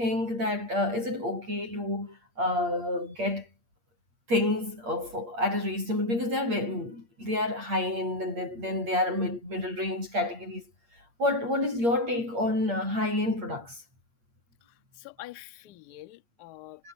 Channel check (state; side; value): late; left; 8.6 ms